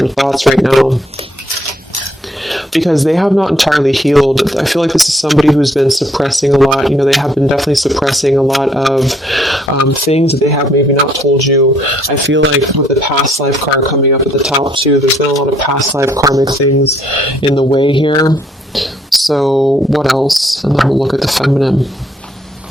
thoughts right now, because they have not entirely healed. I feel like this is somebody who's been suppressing a lot. They have been definitely suppressing a lot of things that they have maybe not told you. I feel like with the past life card coming up at the top too, there's been a lot of past life karmic things in the way here. So what else? And then we'll look at the feminine.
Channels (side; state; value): both; normal; correlation 0.67